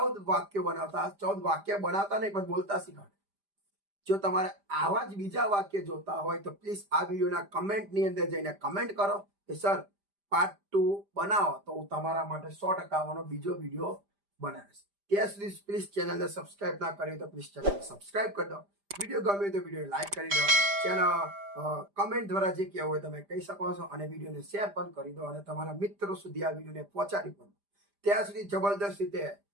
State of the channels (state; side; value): late; left; 5.0 ms